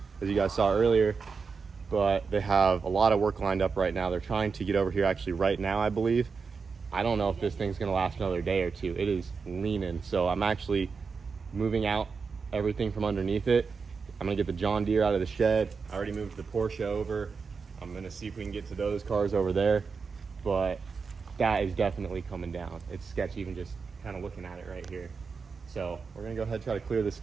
as you guys saw earlier. But they have a lot of work lined up right now. They're trying to get over here actually right now, I believe. I don't know if this thing's gonna last another day or two. It is leaning. So I'm actually moving out everything from underneath it. I'm gonna get the John Deere out of the shed. I already moved the Porsche over. I'm gonna see if we can get to those cars over there. But that is definitely coming down. It's sketchy even just kind of looking at it right here. So we're gonna go ahead and try to clear this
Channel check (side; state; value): left; quieter; 5.1 dB